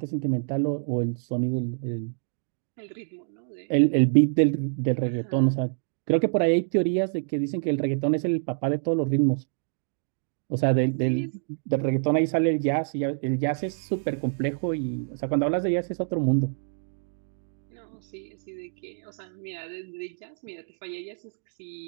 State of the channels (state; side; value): silent; left; digital silence